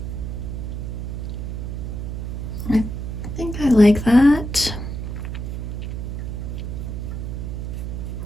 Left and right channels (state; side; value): noise; right; hum, 4 dB below the sound